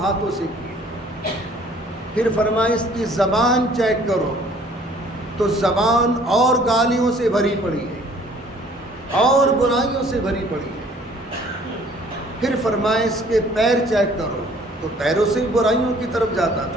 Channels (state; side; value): normal; both; correlation 0.56